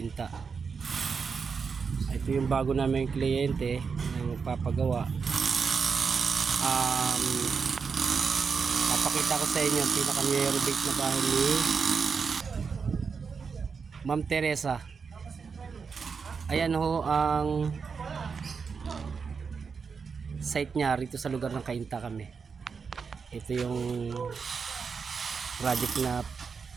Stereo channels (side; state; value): left; quieter; 5.6 dB